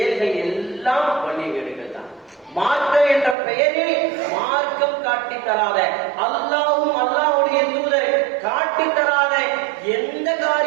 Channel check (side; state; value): left; drops out; at 3.4 s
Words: எல்லாம் வழியீடுகள் தான். மார்க்கம் என்ற பெயரில் மார்க்கம் காட்டி தராத, அல்லாஹ்வும் அல்லாஹ்வுடைய தூதர் காட்டி தராத எந்த